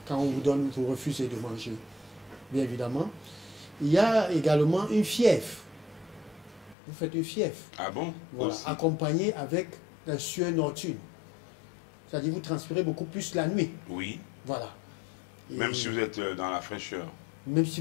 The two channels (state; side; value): drops out; right; at 6.8 s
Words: Quand on vous donne, vous refusez de manger. Bien évidemment. Il y a également une fièvre. Vous faites une fièvre. Ah bon? Voilà, Aussi. accompagnée avec la sueur nocturne. C'est-à-dire vous transpirez beaucoup plus la nuit. Oui. Voilà. Et Même si vous êtes dans la fraîcheur. même si